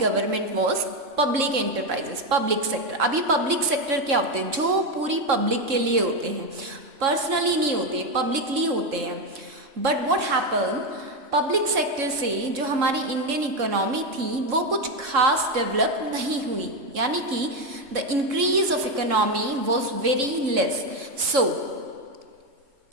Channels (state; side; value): late; left; 3.7 ms